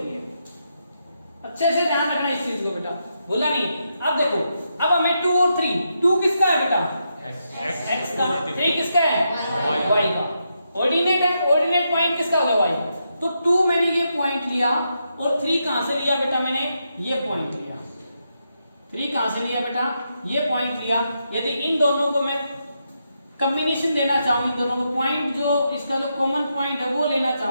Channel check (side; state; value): both; inverted; correlation -0.83